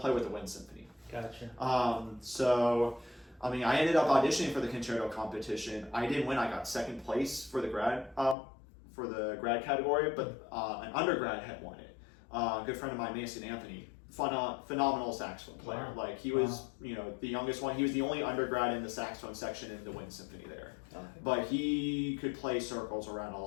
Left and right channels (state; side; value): drops out; right; at 8.3 s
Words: with the wind symphony. Gotcha. I mean, I ended up auditioning for the concerto competition. I didn't win. I got second place for the grad category, but an undergrad had won it. A good friend of mine, Mason Anthony, phenomenal saxophone player. Wow. Like he was, the youngest one. He was the only undergrad in the saxophone section in the Wind Symphony there. Okay. But he could play circles around a